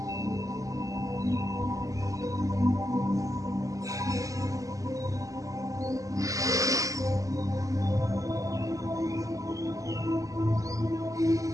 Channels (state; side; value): late; left; 0.16 ms